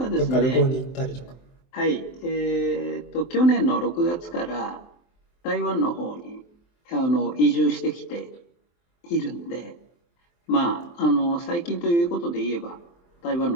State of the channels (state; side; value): late; right; 23 ms